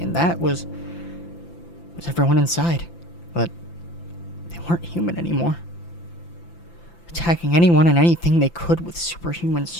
that was everyone inside. But they weren't human anymore. Attacking anyone and anything they could with superhuman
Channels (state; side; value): late; right; 5.9 ms